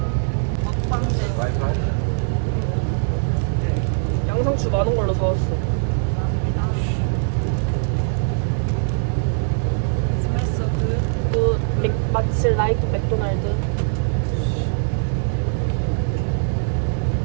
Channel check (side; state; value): left; silent; digital silence